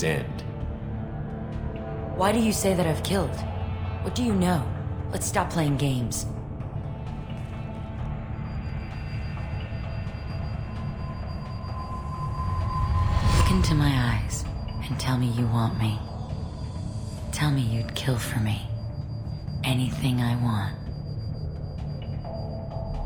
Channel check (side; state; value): both; identical; correlation 1.00